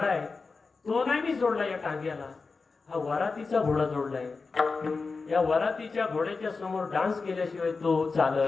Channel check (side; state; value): right; quieter; 4.3 dB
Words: आहे तो नाही मी जोडला या टांग्याला, हा वरातीचा घोडा जोडलाय. या वरातीच्या घोड्याच्या समोर डान्स केल्याशिवाय तो